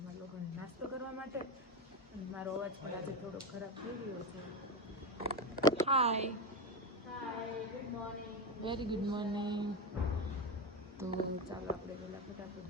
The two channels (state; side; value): normal; both; correlation 0.16